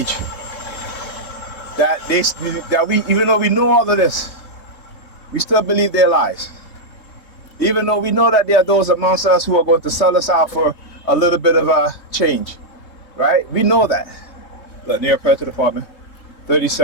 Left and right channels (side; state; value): right; late; 3.2 ms